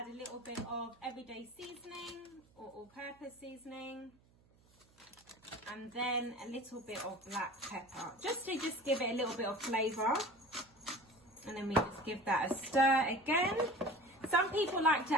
a little bit of everyday seasoning or all-purpose seasoning, and then a little bit of black pepper, just to give it a little bit of flavour. And then we just give that a stir again. Some people like to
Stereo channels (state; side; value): noise; right; hum, 30 dB below the sound